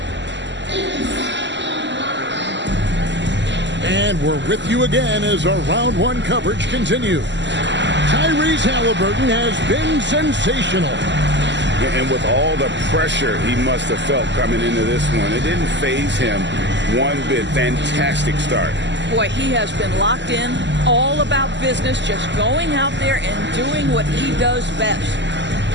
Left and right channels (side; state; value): left; late; 0.52 ms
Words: And we're with you again as our round 1 coverage continues. Tyrese Halliburton has been sensational. And with all the pressure he must have felt coming into this one, it didn't faze him one bit. Fantastic start. Boy, he has been locked in, all about business, just going out there and doing what he does best.